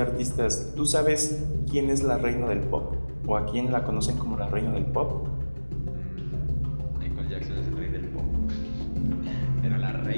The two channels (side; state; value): both; inverted; correlation -1.00